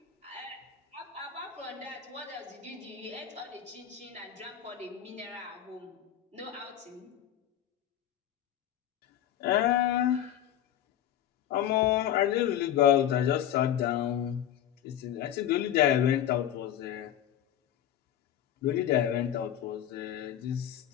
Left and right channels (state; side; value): quieter; right; 10.8 dB